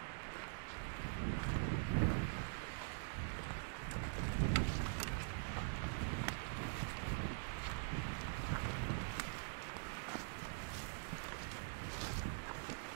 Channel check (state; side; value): silent; left; digital silence